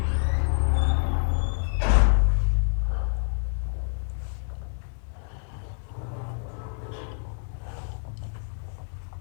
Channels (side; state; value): right; silent; digital silence